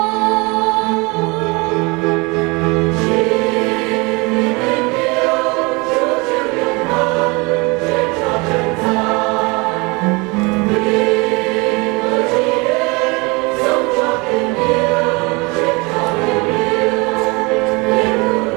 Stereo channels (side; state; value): left; quieter; 26.8 dB